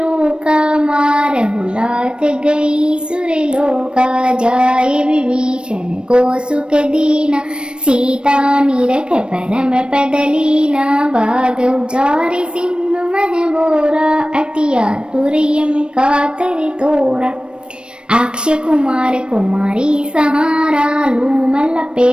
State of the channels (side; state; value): left; late; 0.055 ms